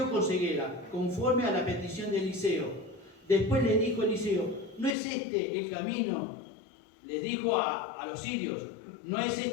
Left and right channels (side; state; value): right; drops out; at 5.0 s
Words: con ceguera, conforme a la petición de Eliseo. Después le dijo Eliseo, ¿no es este el camino? Les dijo a los sirios, no es